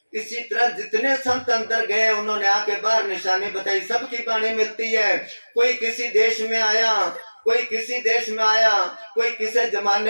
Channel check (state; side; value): inverted; both; correlation -1.00